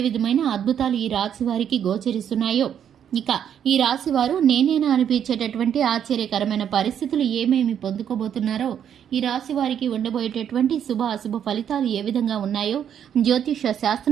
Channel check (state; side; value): quieter; left; 9.0 dB